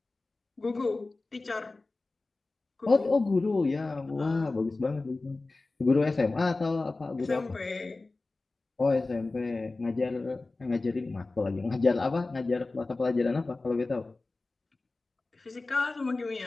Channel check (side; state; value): right; quieter; 3.4 dB